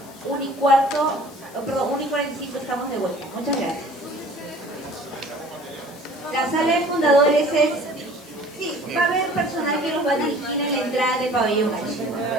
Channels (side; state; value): left; noise; hiss, 22 dB below the sound